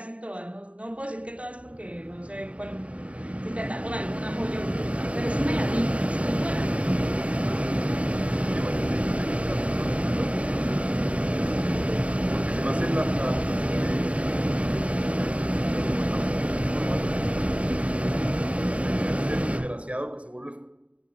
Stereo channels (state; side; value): late; left; 0.064 ms